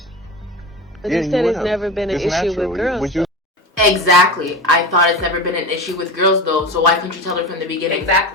But you said it's never been an issue with girls. Exactly. I thought it's never been an issue with girls, though, so why couldn't you tell her from the beginning?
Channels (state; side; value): normal; both; correlation 0.26